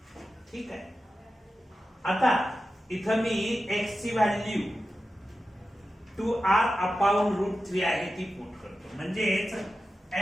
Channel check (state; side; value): normal; both; correlation 0.92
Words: ठीक आहे आता इथं मी एक्स ची व्हॅल्यू 2r अपॉन रूट 3 आहे ती पुट करतो म्हणजेच